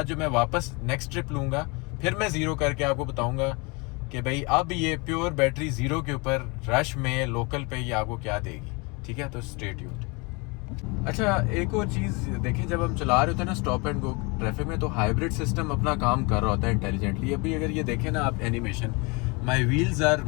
जो मैं वापस नेक्स्ट ट्रिप लूँगा, फिर मैं ज़ीरो करके आपको बताऊँगा कि भाई अब ये प्योर बैटरी ज़ीरो के ऊपर रश में लोकल पे ये आपको क्या देगी, ठीक है। तो स्टे ट्यून्ड। अच्छा, एक और चीज़ देखें, जब हम चला रहे होते हैं ना स्टॉप एंड गो ट्रैफिक में, तो हाइब्रिड सिस्टम अपना काम कर रहा होता है इंटेलिजेंटली। अभी अगर ये देखें ना आप animation, my wheels are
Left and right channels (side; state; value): right; quieter; 28.9 dB